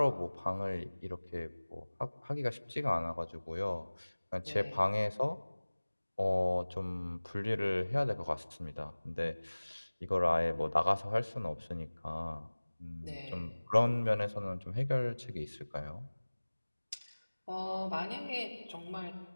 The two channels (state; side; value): inverted; both; correlation -1.00